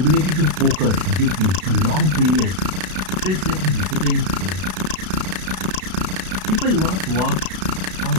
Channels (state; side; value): late; left; 32 ms